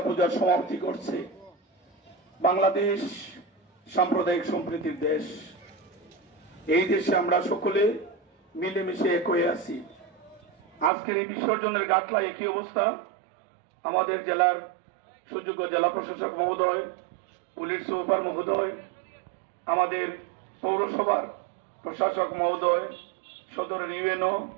সমাপ্তি করছে। বাংলাদেশ সাম্প্রদায়িক সম্প্রীতির দেশ। এই দেশে আমরা সকলে মিলেমিশে এক হয়ে আছি। আজকের এই বিসর্জনের গাটলা একই অবস্থা। আমাদের জেলার সুযোগ্য জেলা প্রশাসক মহোদয়, পুলিশ সুপার মহোদয়, আমাদের পৌরসভার প্রশাসক মহোদয়, সদরের ইউএনও,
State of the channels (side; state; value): left; drops out; at 10.9 s